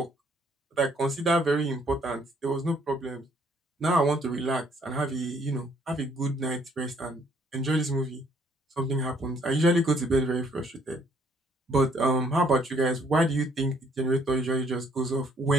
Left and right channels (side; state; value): both; normal; correlation 0.65